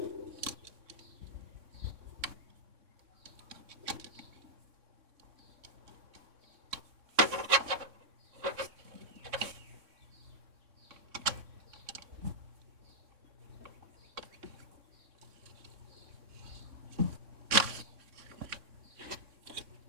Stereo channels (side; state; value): left; late; 3.6 ms